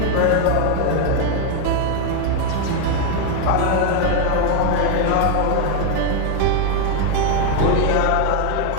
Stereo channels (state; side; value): different; both; correlation 0.01